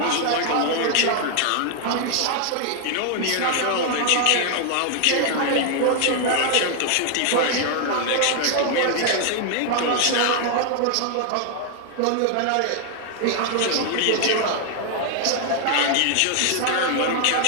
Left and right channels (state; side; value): different; both; correlation 0.00